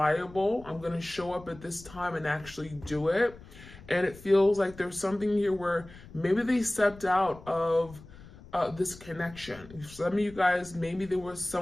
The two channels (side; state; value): left; noise; rumble, 19 dB below the sound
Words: I'm going to show up at this time and actually do it. And it feels like there's something here where maybe they stepped out of this connection. Some of you guys, maybe there was